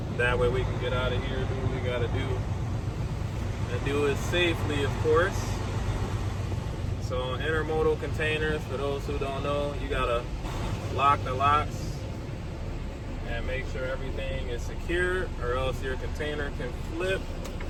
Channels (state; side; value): identical; both; correlation 1.00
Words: That way we can get out of here, do what we gotta do, and do it safely, of course. So intermodal containers, for those who don't know, you gotta lock the locks and make sure everything is secure, or else your container can flip.